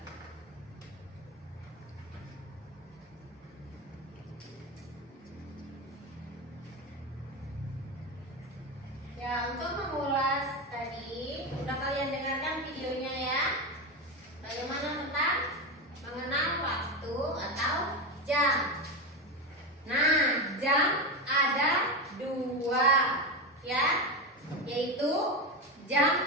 Ya, untuk mengulas tadi, udah kalian dengarkan videonya ya. Bagaimana tentang mengenal waktu atau jam. Nah, jam ada dua ya, yaitu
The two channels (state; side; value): normal; both; correlation 0.17